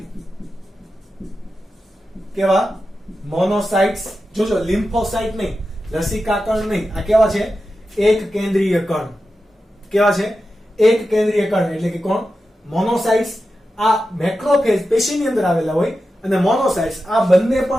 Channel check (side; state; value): both; normal; correlation 0.91